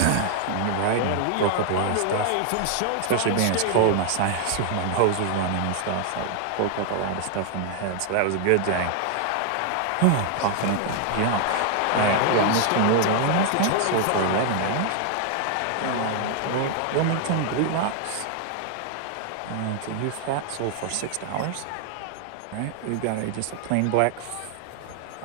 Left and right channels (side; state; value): both; different; correlation 0.00